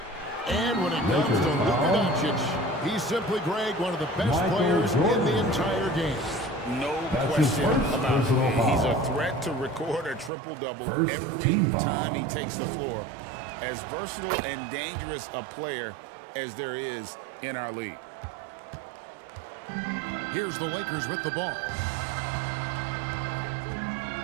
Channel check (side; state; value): left; drops out; at 10.3 s